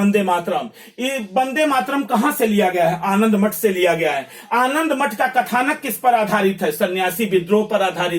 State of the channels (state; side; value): identical; both; correlation 1.00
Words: मातरम। ये वंदे मातरम कहां से लिया गया है, आनंद मठ से लिया गया है। आनंद मठ का कथानक किस पर आधारित है, सन्यासी विद्रोह पर